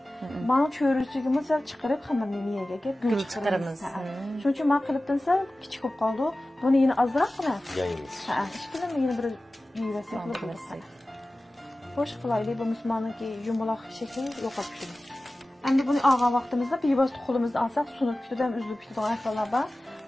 Men cho'rishligimiz sal chiqarib xamirni miyaga gul chiqaramiz. Shuning uchun men qilibdan sal kichik bo'lib qoldi. Buni yana ozroqgina yaymiz. Ha, hech qilib yana bir yuvasa qilib. Xo'sh qilaylik, bu musulmonniki yumaloq shakl yo'qolib ketdi. Endi buni olgan vaqtimizda bevosita qo'limizda olsak, sunib ketadi ham uzilib ketadigan ahvollar bor.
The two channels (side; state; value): both; normal; correlation 0.96